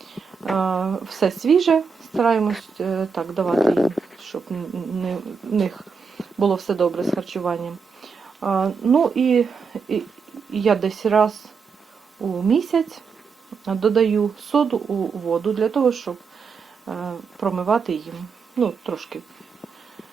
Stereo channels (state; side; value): quieter; left; 5.5 dB